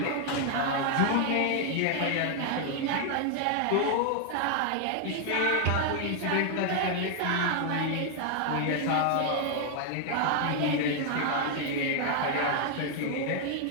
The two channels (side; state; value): both; different; correlation 0.00